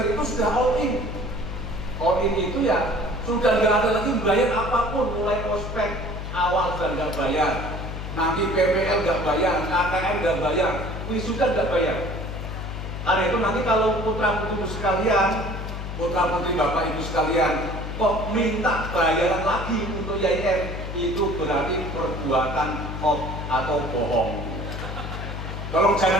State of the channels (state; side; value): noise; left; hum, 6 dB below the sound